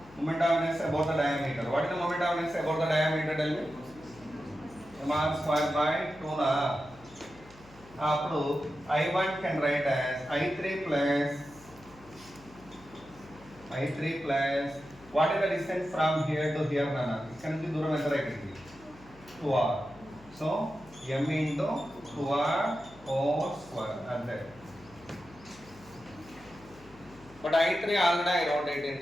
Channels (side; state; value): left; noise; hum, 23 dB below the sound